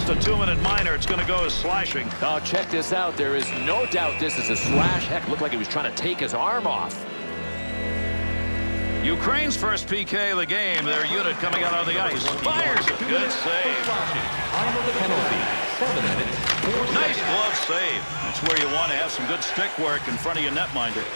a 2-minute minor. It's going to go as slashing. Now check this out. There is no doubt this is a slash. Heck, looked like he was trying to take his arm off. Ukraine's first PK of the game. Their unit coming out on the ice. Fires it. Good save. Time of the penalty. 7 minutes. Nice glove save. That's where you want to have some good stick work in front of your netminder.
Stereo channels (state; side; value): inverted; both; correlation -1.00